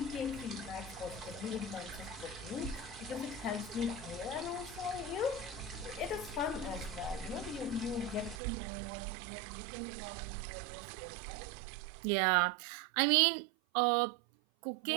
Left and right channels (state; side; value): drops out; left; at 8.4 s